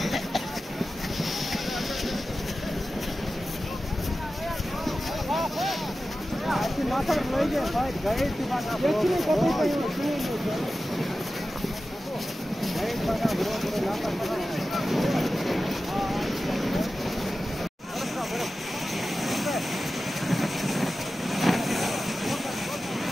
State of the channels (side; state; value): both; normal; correlation 0.94